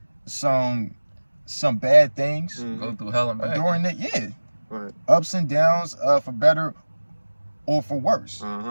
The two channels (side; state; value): both; inverted; correlation -1.00